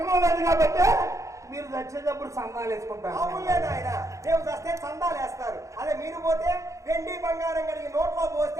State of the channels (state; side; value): late; left; 0.15 ms